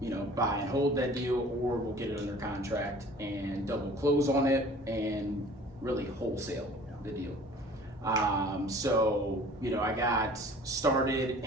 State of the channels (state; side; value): normal; both; correlation 0.48